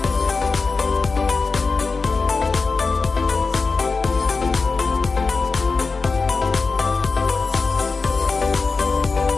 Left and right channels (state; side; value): quieter; right; 4.3 dB